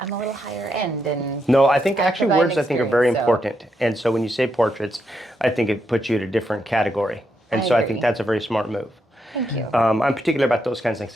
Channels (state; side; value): normal; both; correlation 0.81